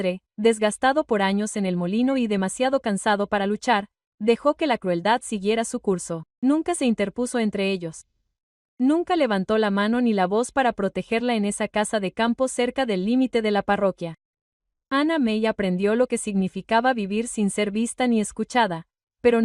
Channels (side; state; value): both; identical; correlation 1.00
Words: desgastado por años en el molino y demasiado cansado para luchar, dejó que la crueldad siguiera su curso. Nunca se interpuso entre ellos. Nunca levantó la mano ni la voz para protegerla en esa casa de campo cerca del límite de la parroquia. Anna May aprendió lo que significaba vivir sin ser vista ni escuchada, pero